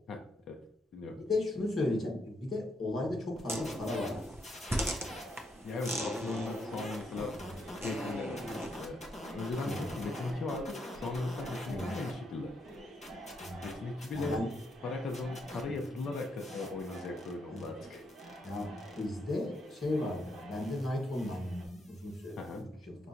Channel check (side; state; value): both; normal; correlation 0.78